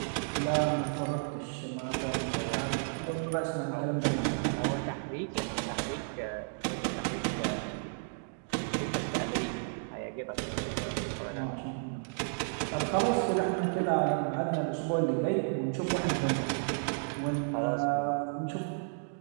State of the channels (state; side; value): silent; left; digital silence